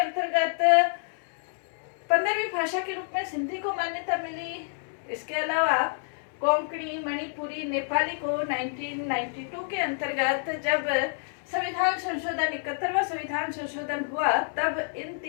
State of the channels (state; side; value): silent; right; 59 dB below the other